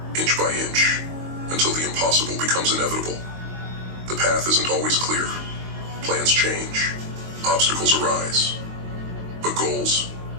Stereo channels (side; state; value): left; late; 22 ms